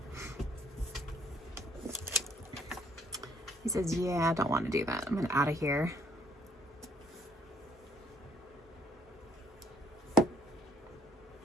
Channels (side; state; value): both; normal; correlation 0.64